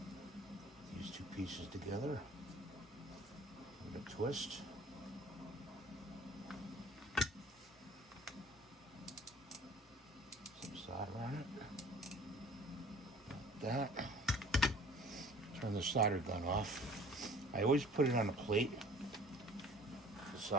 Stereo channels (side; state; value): both; normal; correlation 0.49